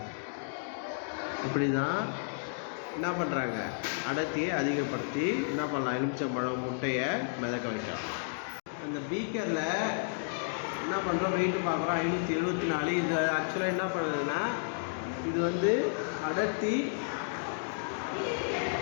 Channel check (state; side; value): silent; right; digital silence